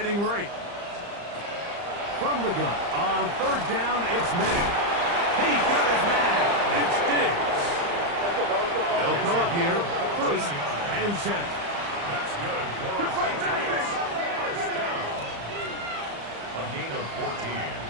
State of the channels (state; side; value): late; left; 35 ms